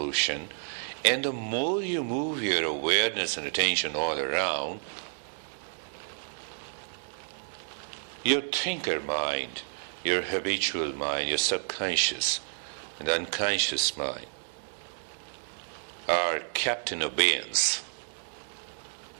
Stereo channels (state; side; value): silent; left; digital silence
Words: and the more you move your awareness and attention all around, your thinker mind, your habitual mind, your subconscious and unconscious mind are kept in abeyance,